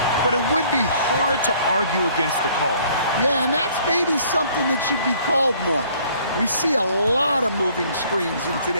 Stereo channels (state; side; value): inverted; both; correlation -0.59